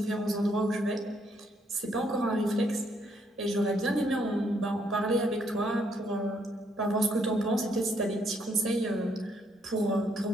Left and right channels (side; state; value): both; normal; correlation 0.71